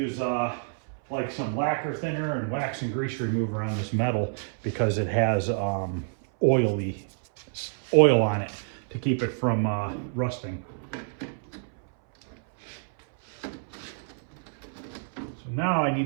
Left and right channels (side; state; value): left; silent; 59 dB below the other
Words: like some lacquer thinner and wax and grease remover on this metal because it has oil on it to keep it from rusting. So now I